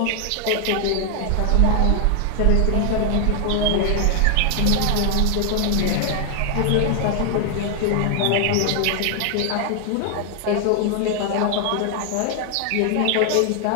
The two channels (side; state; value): both; different; correlation 0.00